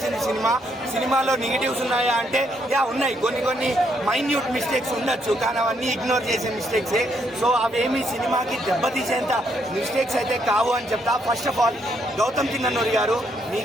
సినిమా. సినిమాలో నెగిటివ్స్ ఉన్నాయా అంటే ఉన్నాయి, కొన్ని మైన్యూట్ మిస్టేక్స్ ఉండొచ్చు, కానీ అవన్నీ ఇగ్నోర్ చేసే మిస్టేక్సే. సో అవేమి సినిమాకి దెబ్బతీసేంత మిస్టేక్స్ అయితే కావు అని చెప్తా. First of all Gautam Chinnanuri గారు,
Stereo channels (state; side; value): normal; both; correlation 0.73